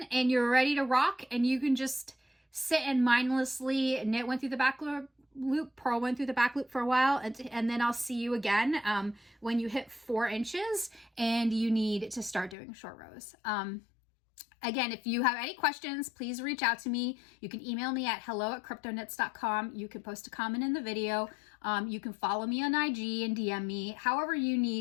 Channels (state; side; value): drops out; right; at 12.6 s